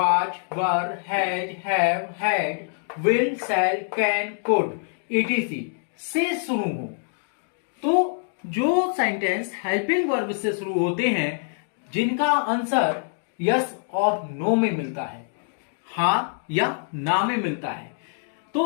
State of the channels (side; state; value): right; silent; digital silence